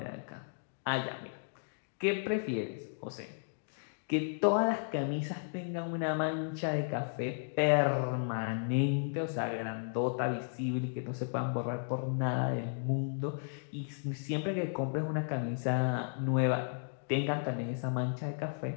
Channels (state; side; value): silent; right; digital silence